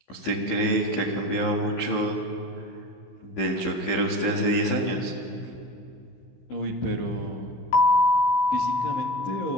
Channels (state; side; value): late; right; 15 ms